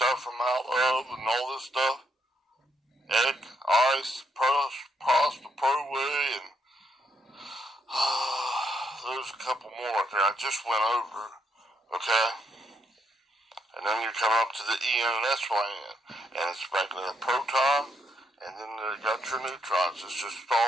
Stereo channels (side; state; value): both; normal; correlation 0.76